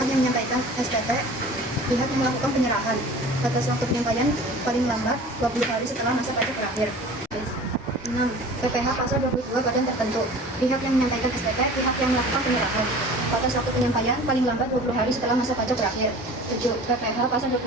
yang menyampaikan SPT pihak yang melakukan penyerahan batas waktu penyampaian paling lambat 20 hari setelah masa pajak berakhir. 6. PPh pasal 22 badan tertentu. Pihak yang menyampaikan SPT pihak yang melakukan penyerahan batas waktu penyampaian paling lambat 20 hari setelah masa pajak berakhir. 7. PPh pasal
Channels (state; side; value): normal; both; correlation 0.42